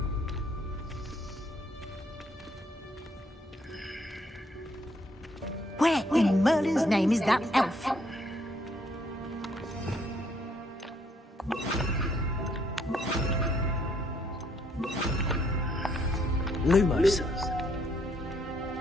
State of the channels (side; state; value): both; normal; correlation 0.69